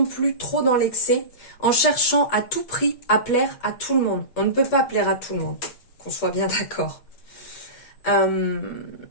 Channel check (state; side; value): late; right; 8.3 ms